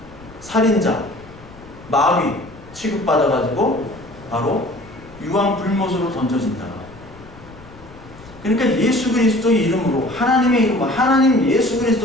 살인자, 마귀 취급받아가지고 바로 유황불못으로 던져진다. 그러니까 예수 그리스도의 이름으로 하나님의 이름으로 하나님 예수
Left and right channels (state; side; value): noise; left; rumble, 20 dB below the sound